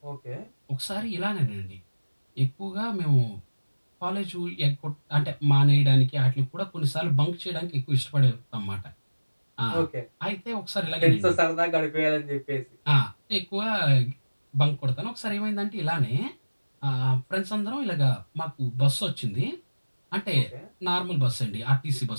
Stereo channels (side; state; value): both; inverted; correlation -1.00